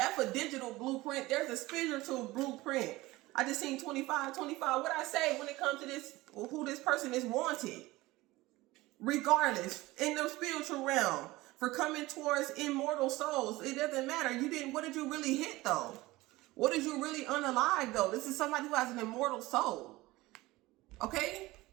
a digital blueprint. There's a spiritual blueprint. I just seen 25. What I say when it comes to this, who this person is wanted? Regardless, in the spiritual realm, for coming towards immortal souls, it doesn't matter. What did you really hit though? What did you really unalive though? This is somebody who has an immortal soul. Okay?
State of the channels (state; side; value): quieter; left; 19.5 dB